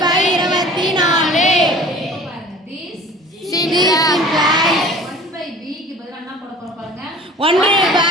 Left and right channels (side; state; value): both; normal; correlation 0.45